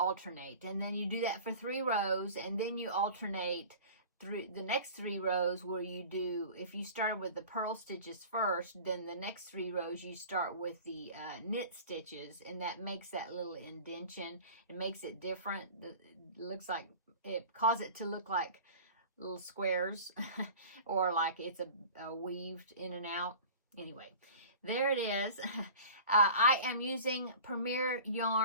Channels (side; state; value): both; inverted; correlation -0.40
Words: and then you do that for 3 rows, and then you alternate through the next 3 rows where you do, if you started with the purl stitches first, then the next 3 rows you start with the knit stitches, and that makes that little indentation. It makes it different. It looks like, it causes it to look like little squares or like it's a weaved in and out. Anyway, there it is. I am using Premier